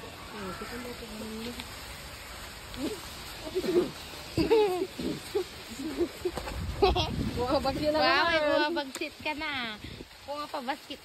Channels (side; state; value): both; identical; correlation 1.00